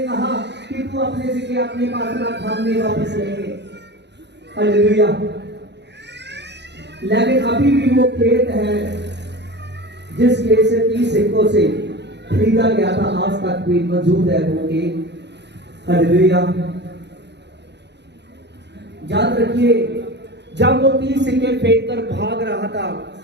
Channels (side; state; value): left; late; 0.50 ms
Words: कहा कि तू अपने सिक्के अपने पास रख, हम नहीं वापस लेंगे। हालेलुया। लेकिन अभी भी वो खेत है जिस खेत से 30 सिक्कों से खरीदा गया था, आज तक भी मौजूद है वो खेत। हालेलुया। याद रखिए, जब वो 30 सिक्के फेंक कर भाग रहा था